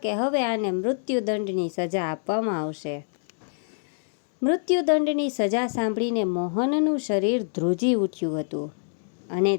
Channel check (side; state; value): right; silent; digital silence